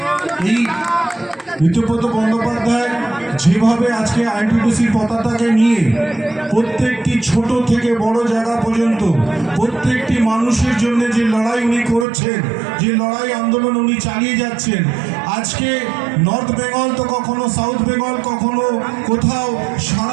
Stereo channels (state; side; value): drops out; left; at 12.1 s